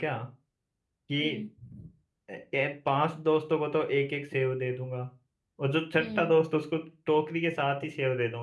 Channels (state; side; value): identical; both; correlation 1.00